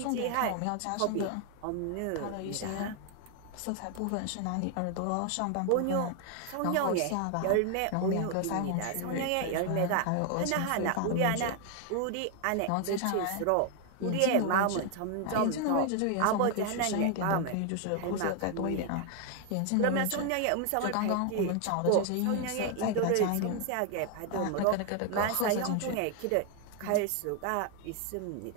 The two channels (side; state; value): both; different; correlation 0.00